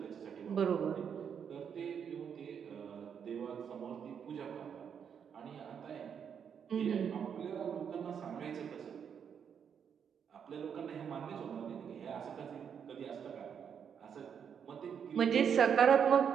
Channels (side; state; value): left; quieter; 7.6 dB